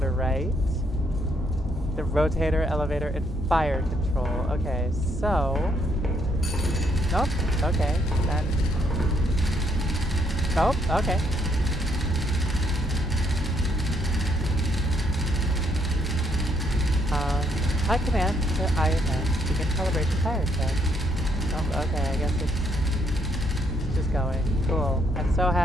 right. The rotator, elevator, and fire control. Okay, so. Nope. Okay. Then. Nope. Okay. High command to IMS. Begin calibration fire check. Oh, okay, I guess it's just going. Cool. I'm so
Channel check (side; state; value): both; normal; correlation 0.71